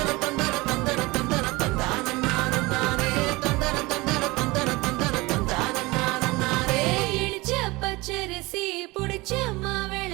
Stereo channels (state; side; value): quieter; left; 22.7 dB